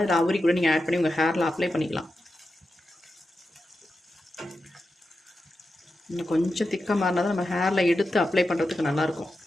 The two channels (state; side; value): normal; both; correlation 0.90